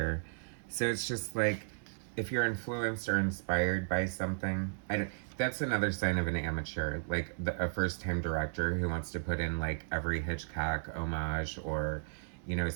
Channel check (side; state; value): left; silent; digital silence